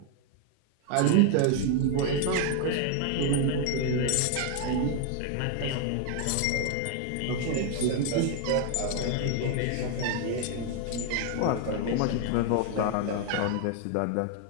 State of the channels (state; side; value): different; both; correlation 0.00